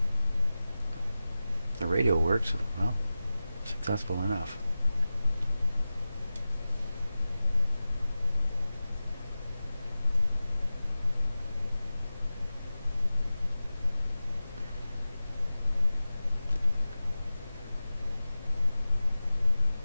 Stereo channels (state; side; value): inverted; both; correlation -0.95